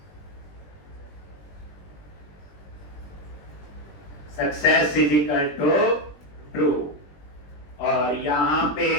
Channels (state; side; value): late; right; 20 ms